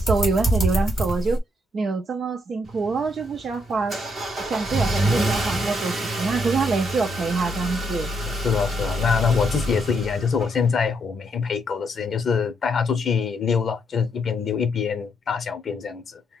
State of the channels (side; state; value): both; normal; correlation 0.75